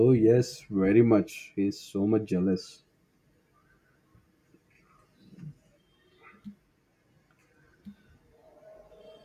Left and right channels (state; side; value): identical; both; correlation 1.00